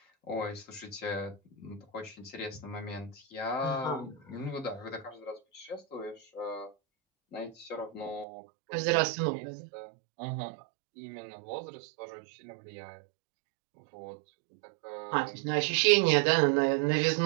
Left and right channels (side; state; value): left; drops out; at 8.2 s